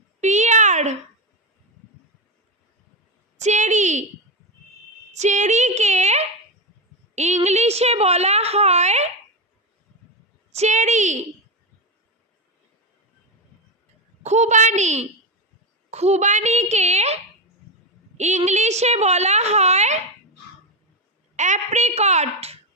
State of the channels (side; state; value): both; normal; correlation 0.13